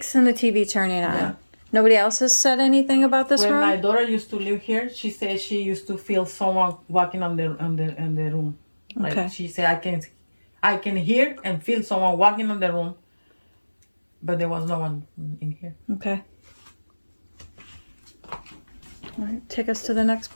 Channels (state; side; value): inverted; both; correlation -1.00